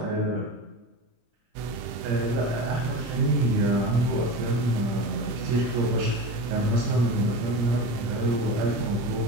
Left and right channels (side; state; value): left; late; 26 ms